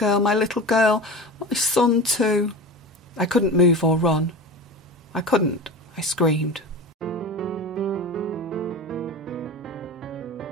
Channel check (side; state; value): both; normal; correlation 0.30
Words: my little girl, my son too. I couldn't move or run. I couldn't. I screamed.